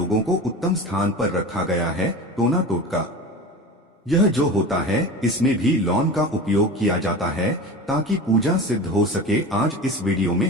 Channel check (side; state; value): both; normal; correlation 0.32